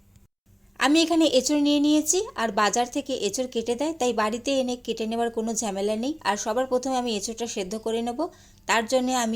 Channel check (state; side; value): identical; both; correlation 1.00